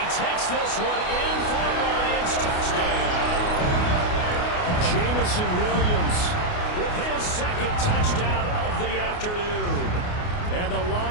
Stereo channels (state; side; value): late; right; 28 ms